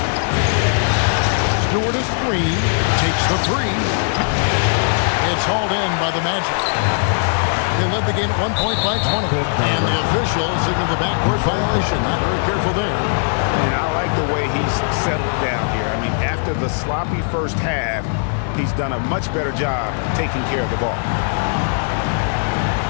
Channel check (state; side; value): silent; right; 67 dB below the other